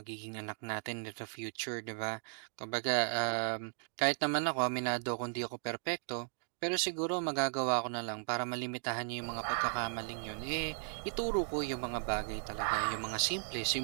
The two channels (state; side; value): silent; left; 54 dB below the other